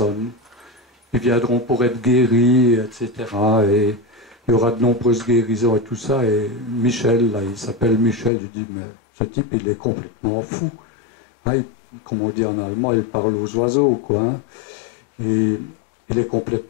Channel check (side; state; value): right; drops out; at 8.3 s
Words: Ils viendront pour être guéris, etc. Et il y aura de nombreuses guérisons et tout ça. Et Michel, là, il s'appelle Michel, il dit, mais ce type, il est complètement fou. Hein, comme on dit en allemand, il parle aux oiseaux, quoi. Hein. Et il est